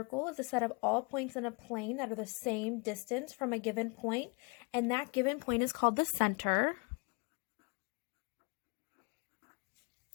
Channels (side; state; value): right; quieter; 31.2 dB